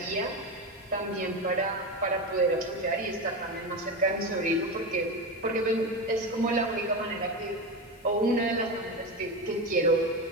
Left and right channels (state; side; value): normal; both; correlation 0.18